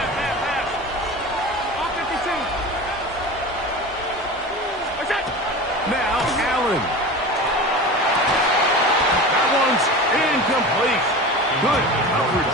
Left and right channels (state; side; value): normal; both; correlation 0.32